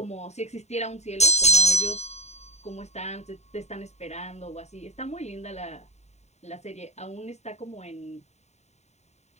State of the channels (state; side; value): late; right; 0.32 ms